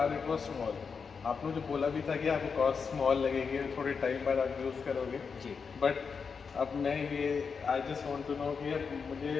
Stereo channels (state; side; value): quieter; right; 5.6 dB